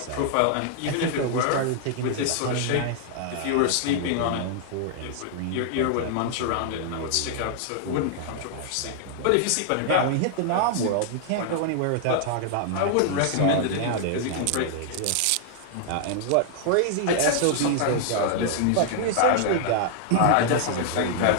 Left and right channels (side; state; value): both; different; correlation -0.01